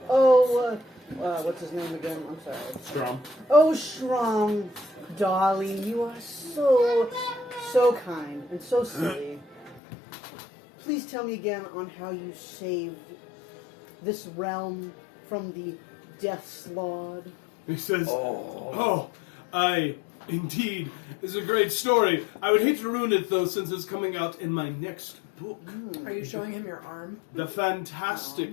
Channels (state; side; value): drops out; right; at 9.8 s